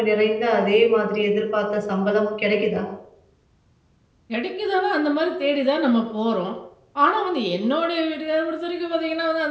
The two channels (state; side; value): identical; both; correlation 1.00